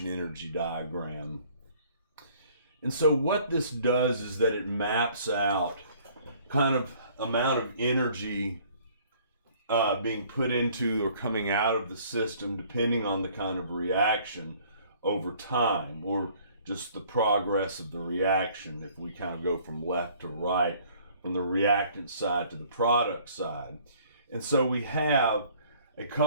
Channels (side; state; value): both; inverted; correlation -0.57